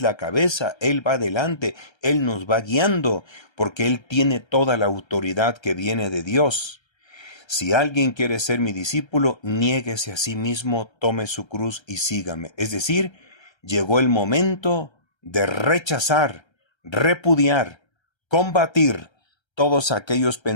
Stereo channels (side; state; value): right; late; 1.3 ms